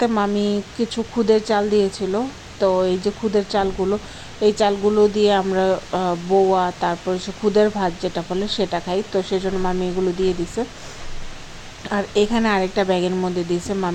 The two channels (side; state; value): both; identical; correlation 1.00